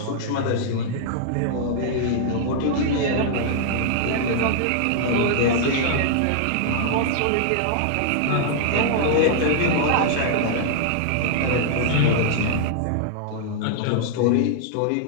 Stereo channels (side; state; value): both; different; correlation -0.01